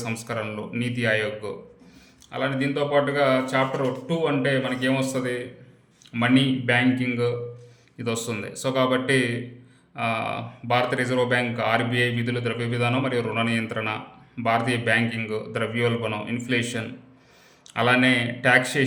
సంస్కరణలు, నీతి ఆయోగ్. అలానే దీంతో పాటుగా చాప్టర్ 2 అంటే మనకి ఏమొస్తుంది, మనీ, బ్యాంకింగ్ ఇది వస్తుంది. సో కాబట్టి భారత రిజర్వ్ బ్యాంక్, ఆర్బీఐ విధులు, ద్రవ్య విధానం మరియు రుణ నియంత్రణ, భారతీయ బ్యాంకింగ్, ద్రవ్యోల్బణం, ఇన్ఫ్లేషన్, అలానే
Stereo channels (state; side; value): identical; both; correlation 1.00